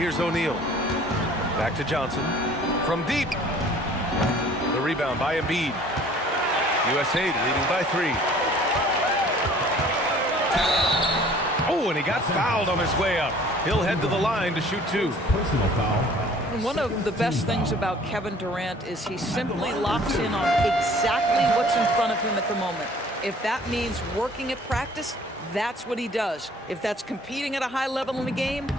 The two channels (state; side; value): normal; both; correlation 0.52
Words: O'Neal. Back to Johnson. From deep. The rebound by Embiid. USA leading by 3. Oh, and he got fouled on his way up. He'll head to the line to shoot 2. Personal foul. One of the best things about Kevin Durant is he simply locks in on exactly what's in front of him at the moment. If that means working at practice, that's what he does. If that's competing at a high level in the game,